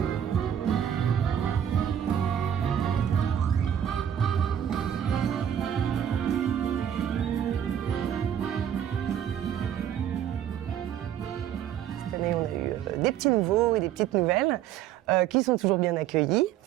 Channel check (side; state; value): left; quieter; 9.8 dB